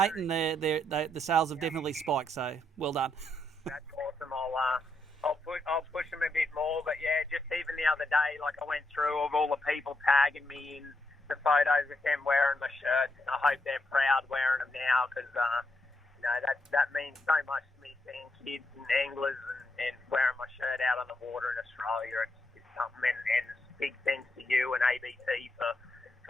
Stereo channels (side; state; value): both; normal; correlation 0.80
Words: and the sales have definitely spiked. So well done. That's awesome. I'll push them a bit more, but yeah, just even the other day, like I went through of all the people tagging me in the photos of them wearing my shirts, and I hope they're proud wearing them now, because that means so much to me, seeing kids and anglers and wearing my shirt out on the water in Australia. It's something, and big thanks to you and ABC